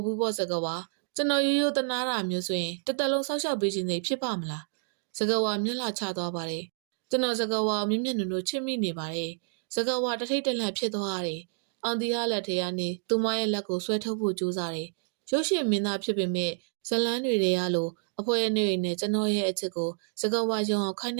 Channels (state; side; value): silent; left; 59 dB below the other